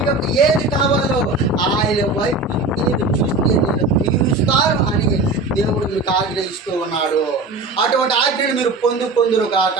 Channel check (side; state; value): left; quieter; 3.3 dB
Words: యొక్క ఏది కావాలో ఆయన వైపు నేను చూస్తే నేను తీరుస్తాను అని దేవుడు మీకు ఆజ్ఞయిస్తూ ఉన్నాడు. అటువంటి ఆజ్ఞను మీరు పొందురు కాక.